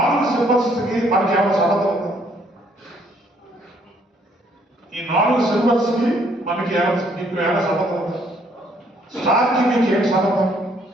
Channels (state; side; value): normal; both; correlation 0.65